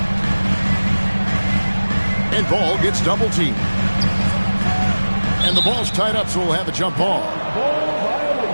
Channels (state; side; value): inverted; both; correlation -1.00